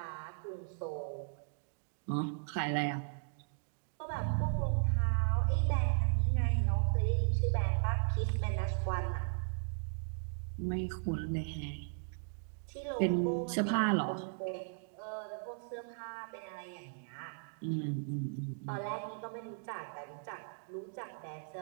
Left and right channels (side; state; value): left; silent; digital silence